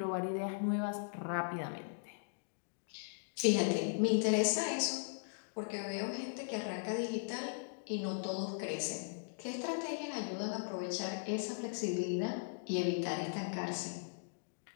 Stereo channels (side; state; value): right; silent; digital silence